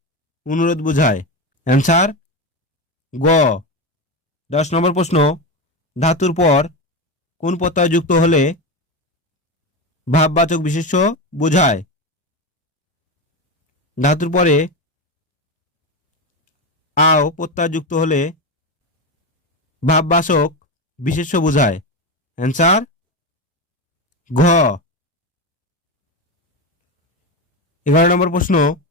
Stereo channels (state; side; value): normal; both; correlation 0.16